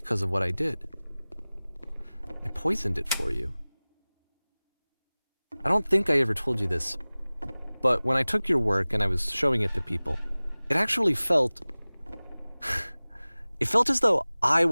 of what I did. I poisoned it for you. I don't think I ever told you this, but when I took your work and I was showing it to people, it actually felt... it felt as though I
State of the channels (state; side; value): inverted; both; correlation -0.99